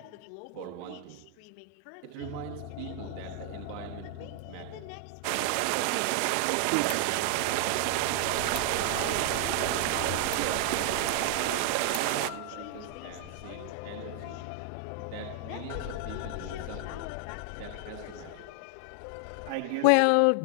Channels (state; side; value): different; both; correlation 0.00